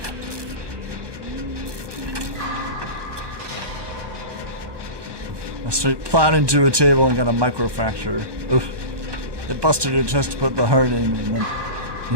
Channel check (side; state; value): left; late; 1.2 ms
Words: I straight plowed into a table and got a microfracture. Oof. It busted her chest to put the heart in and then, you